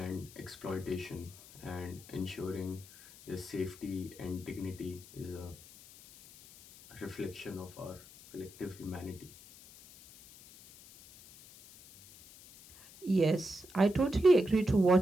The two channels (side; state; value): left; noise; hiss, 20 dB below the sound